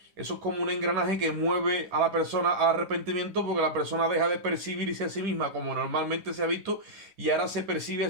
eso es como un engranaje que mueve a la persona al arrepentimiento, porque la persona deja de percibirse a sí misma como normalmente se ha visto y ahora se percibe a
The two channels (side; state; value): left; late; 10 ms